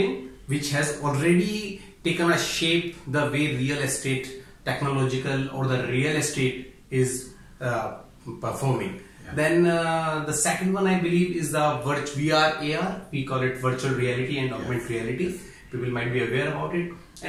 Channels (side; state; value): both; identical; correlation 1.00